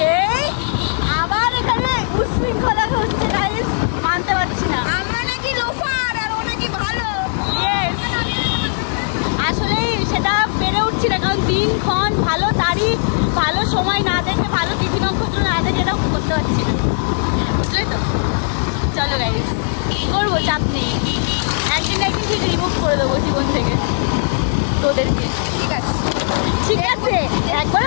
এই আবার এখানে উশৃঙ্খলা হচ্ছে গাইস, মানতে পারছি না। আমরা নাকি লোফার আর ও নাকি ভালো। আসলেই সেটা পেরে উঠছি না, কারণ দিনক্ষণ ভালো তারিখ, ভালো সময় না দেখে, ভালো তিথি নক্ষত্র না দেখে এটাও করতে পারছি না, বুঝলে তো? চলো গাইস, করবো, চাপ নেই। একদিন একদিন ঠিক রিমুভ করে দেবো জীবন থেকে তোদেরকে। ঠিক আছে ঠিক আছে,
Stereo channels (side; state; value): right; silent; digital silence